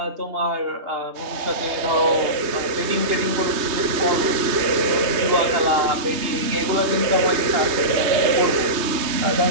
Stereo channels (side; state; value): left; late; 3.2 ms